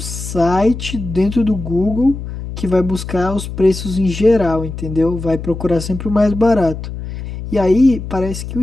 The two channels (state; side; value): noise; left; hum, 8 dB below the sound